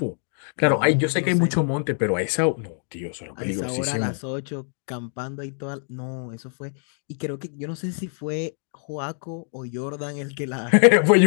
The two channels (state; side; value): silent; right; digital silence